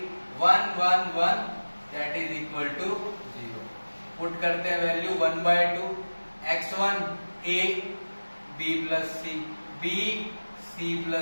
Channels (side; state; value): both; inverted; correlation -1.00